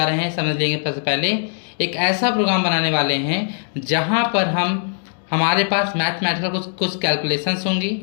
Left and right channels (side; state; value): right; silent; 64 dB below the other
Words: रहे हैं। समझ लेंगे सबसे पहले एक ऐसा प्रोग्राम बनाने वाले हैं जहाँ पर हमारे पास मैथमेटिकल कुछ कैलकुलेशंस होंगी।